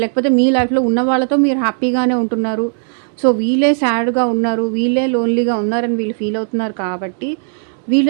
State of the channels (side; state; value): left; silent; 58 dB below the other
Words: లేకపోతే మీ లైఫ్‌లో ఉన్న వాళ్ళతో మీరు హ్యాపీగానే ఉంటున్నారు. వీళ్ళే సాడ్‌గా ఉన్నారు. వీళ్ళే లోన్లీగా ఉన్నారని వీళ్ళు ఫీల్ అవుతున్నారు కాబట్టి